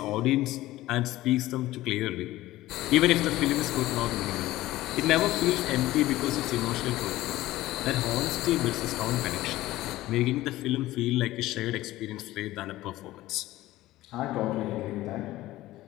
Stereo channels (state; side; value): quieter; right; 16.5 dB